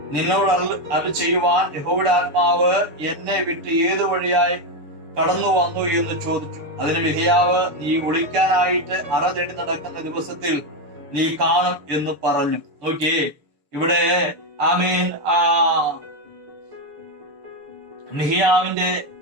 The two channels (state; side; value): late; left; 7.1 ms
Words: നിന്നോട് അരുളി ചെയ്യുവാൻ യഹോവയുടെ ആത്മാവ് എന്നെ വിട്ട് ഏതു വഴിയായി കടന്നു വന്നു എന്ന് ചോദിച്ചു. അതിന് മിഖ്യാവ്, നീ ഒളിക്കാനായിട്ട് അറ തേടി നടക്കുന്ന ദിവസത്തിൽ നീ കാണും എന്ന് പറഞ്ഞു. നോക്കിയേ, ഇവിടെ മിഖ്യാവിന്റെ